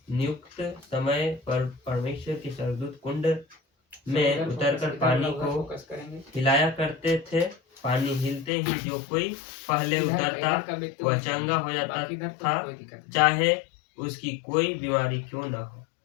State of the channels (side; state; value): right; drops out; at 8.5 s